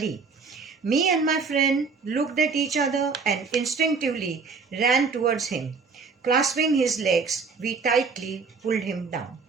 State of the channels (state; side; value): quieter; left; 4.9 dB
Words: Me and my friend looked at each other and instinctively ran towards him. Clasping his legs, we tightly pulled him down.